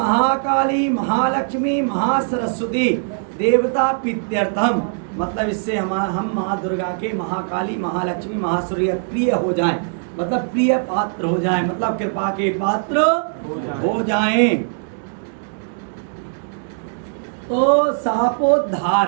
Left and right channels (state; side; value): silent; left; digital silence